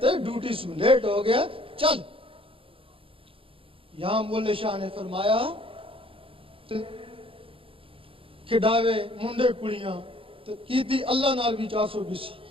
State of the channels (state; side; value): late; left; 0.26 ms